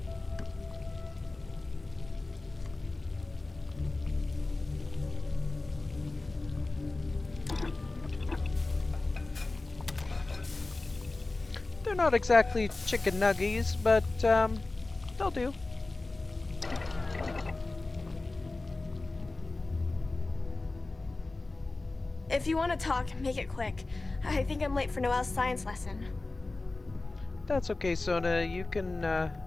They're not exactly chicken nuggies, but they'll do. If you want to talk, make it quick. I think I'm late for Noelle's science lesson. That's okay, Sona. You can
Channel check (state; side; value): quieter; right; 3.2 dB